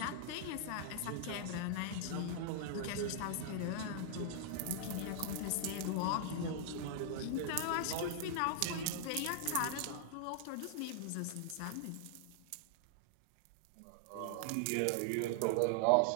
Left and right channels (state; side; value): different; both; correlation -0.01